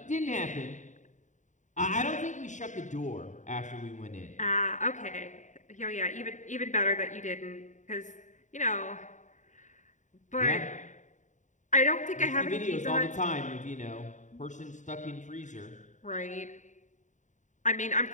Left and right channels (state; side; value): late; right; 0.36 ms